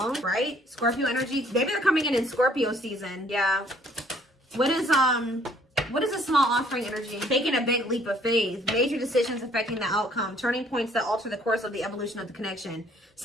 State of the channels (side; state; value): both; normal; correlation 0.61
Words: right? Scorpio energy. Maybe they're coming in Scorpio season. Yeah. What is a small offering energy? Taking a big leap of faith. Major decisions affecting the outcome. Turning points that alter the course of the evolution of the connection.